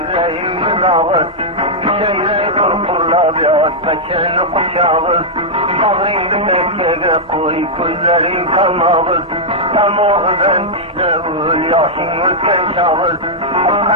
dağır. Şeyreyi kurkurla biraz beçeni kuşağır. Bağrını bekkege koy gözlerin kalmağır. Tamağından dişleğir yaşın ülken çağır.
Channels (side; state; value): both; normal; correlation -0.07